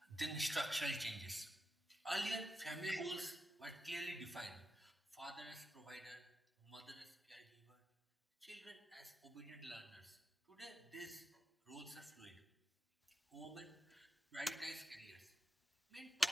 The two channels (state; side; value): normal; both; correlation 0.87